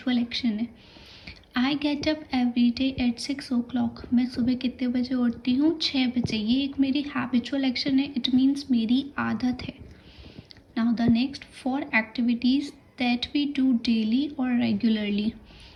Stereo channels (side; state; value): both; identical; correlation 1.00